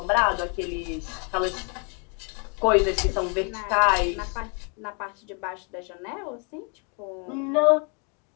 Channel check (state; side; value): quieter; right; 36.8 dB